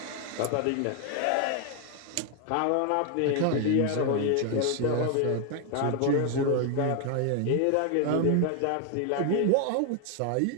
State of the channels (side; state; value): both; different; correlation 0.00